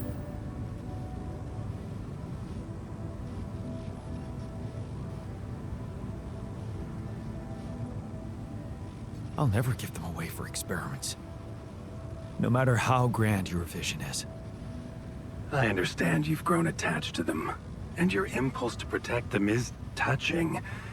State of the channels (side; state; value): both; identical; correlation 1.00